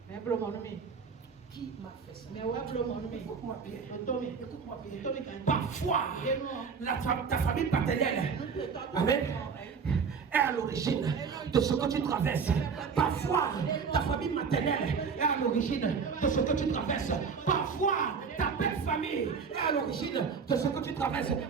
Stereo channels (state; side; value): quieter; left; 5.8 dB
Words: Qui m'a fait ça? Écoute-moi bien. Parfois, ta famille paternelle, amen, est à l'origine de ce que tu traverses. Parfois, ta famille maternelle est à l'origine de ce que tu traverses. Parfois, ta belle famille est à l'origine de ce que tu traverses.